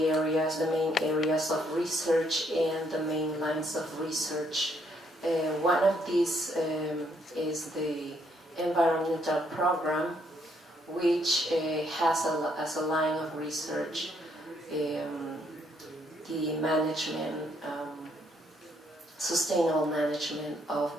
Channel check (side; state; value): both; normal; correlation 0.71